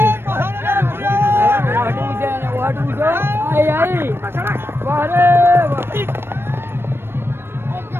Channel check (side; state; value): left; late; 0.11 ms